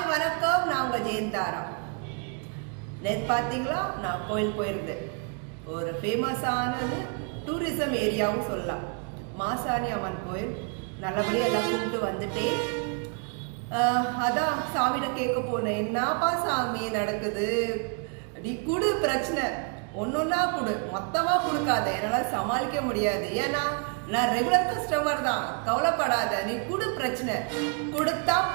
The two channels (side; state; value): left; quieter; 39.0 dB